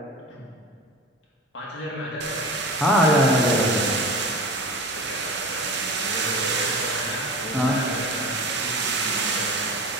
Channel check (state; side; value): normal; both; correlation 0.33